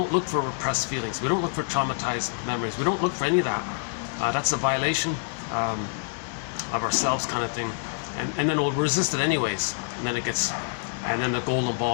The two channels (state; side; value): silent; right; digital silence